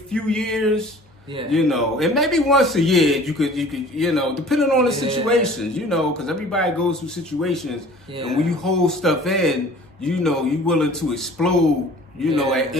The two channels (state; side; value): normal; both; correlation 0.47